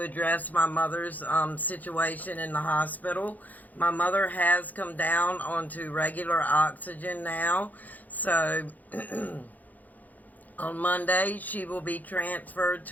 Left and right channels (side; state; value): right; late; 0.081 ms